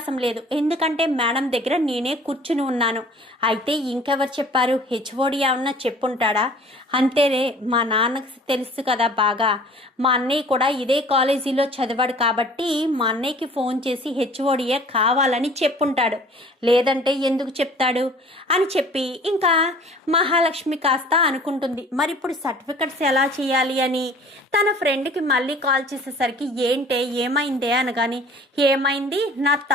లేదు, ఎందుకంటే మేడం దగ్గర నేనే కూర్చుని ఉన్నాను, అయితే ఇంకెవరు చెప్పారు, హెచ్ఓడి ఏమన్నా చెప్పుంటాడా, అంతేనే మా నాన్నకు తెలుసు కదా బాగా, మా అన్నయ్య కూడా ఇదే కాలేజీలో చదివాడు కాబట్టి మా అన్నయ్యకి ఫోన్ చేసి హెచ్ఓడియే కావాలని చెప్పుంటాడు, లేదంటే ఎందుకు చెప్తాడు అని చెప్పి ఇంకా మహాలక్ష్మి కాస్త అనుకుంటుంది. మరి ఇప్పుడు సర్టిఫికెట్స్ ఎలా చేయాలి అని తన ఫ్రెండ్కి మళ్ళీ కాల్ చేసేసరికి ఏంటే ఏమైందే అనగాని ఏమైంది, నా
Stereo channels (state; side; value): normal; both; correlation 0.49